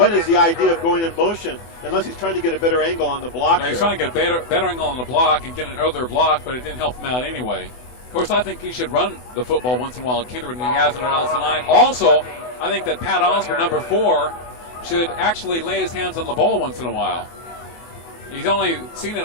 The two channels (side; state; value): right; late; 24 ms